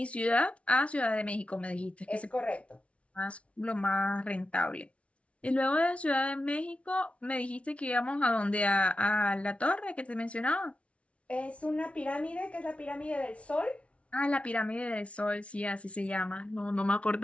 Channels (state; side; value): late; right; 0.062 ms